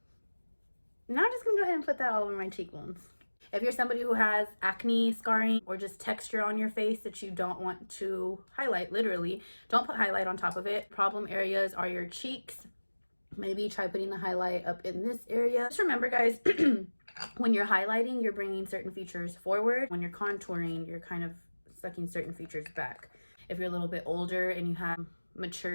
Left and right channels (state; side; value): inverted; both; correlation -1.00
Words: Now I'm just gonna go ahead and put that all over my cheekbones. If you're somebody who has acne, scarring, or just texture on your face that you don't want to highlight, literally, don't put highlight on top of it. Problem areas are your cheeks. Maybe try putting the highlight up in this area. Just remember, guys, when you're highlighting, you're bringing certain features forward. When you're contouring, you're kind of sucking certain features back. If you're a little bit older and you have